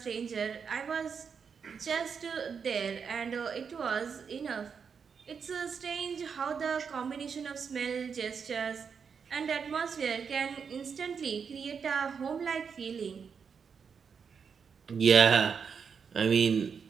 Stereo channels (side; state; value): left; quieter; 6.3 dB